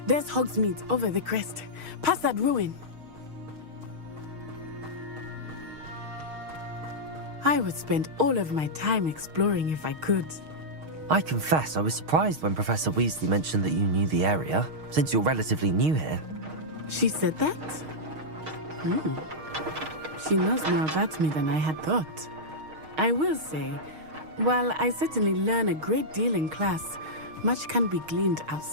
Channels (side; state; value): left; late; 6.4 ms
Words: there's Hogsmeade over the crest. Past that ruin. I would spend all of my time exploring if I could. I confess I was surprised when Professor Weasley mentioned that you knew the area, since you're relatively new here. She said that? She knows more about me than I had thought. I will say, while I certainly learn a great deal in class, much can be gleaned